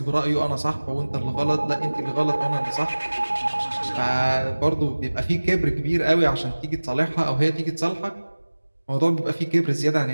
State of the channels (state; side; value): inverted; both; correlation -1.00